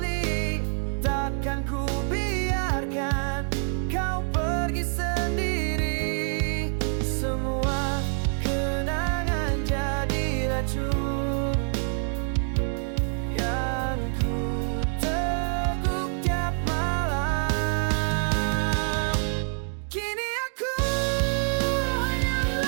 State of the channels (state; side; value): silent; left; 61 dB below the other